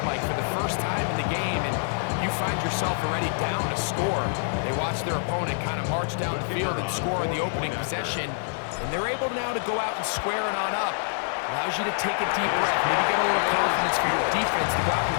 Mike, for the first time in the game, and you find yourself already down a score. They watch their opponent kind of march down the field and score in the opening possession, and they're able now to go out and square it on up. Allows you to take a deep breath, maybe get a little for your defense to go out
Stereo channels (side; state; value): right; silent; digital silence